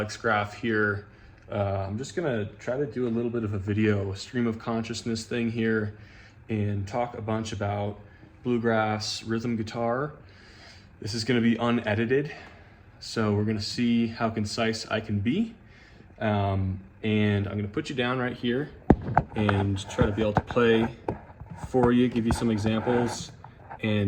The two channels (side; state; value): both; identical; correlation 1.00